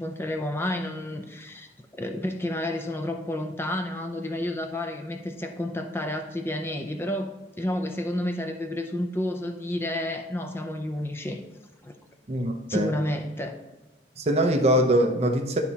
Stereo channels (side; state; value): both; normal; correlation 0.58